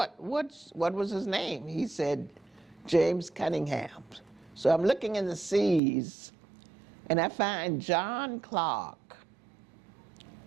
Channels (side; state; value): left; drops out; at 5.8 s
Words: was his name? He said, James Cunningham. So I'm looking in the C's, and I find John Clark.